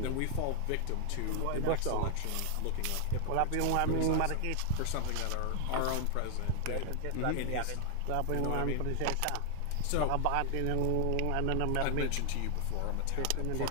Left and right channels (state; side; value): different; both; correlation 0.00